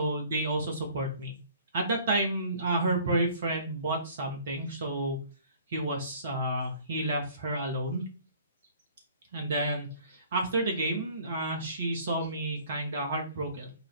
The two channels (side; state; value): both; inverted; correlation -0.53